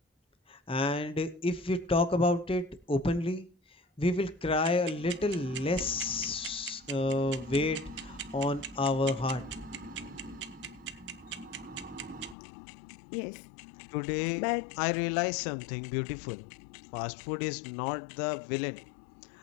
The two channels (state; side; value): drops out; right; at 12.4 s